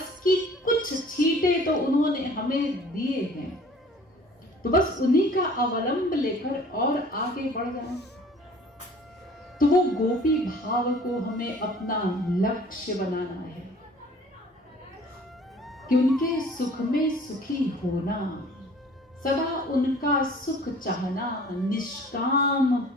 की कुछ छींटे तो उन्होंने हमें दिए हैं, तो बस उन्हीं का अवलंब लेकर और आगे बढ़ जाए। तो वो गोपी भाव को हमें अपना लक्ष्य बनाना है, कि उनके सुख में सुखी होना, सदा उनका सुख चाहना, निष्काम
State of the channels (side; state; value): both; normal; correlation 0.50